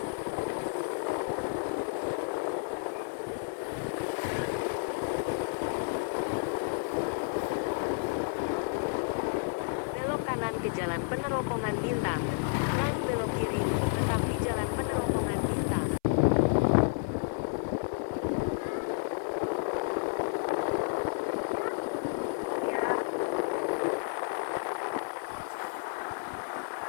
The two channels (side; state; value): right; silent; 57 dB below the other